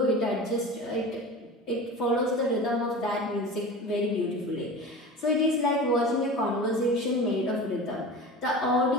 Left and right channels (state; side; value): normal; both; correlation 0.33